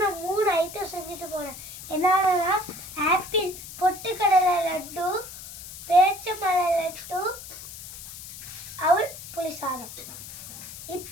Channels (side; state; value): left; noise; hiss, 12 dB below the sound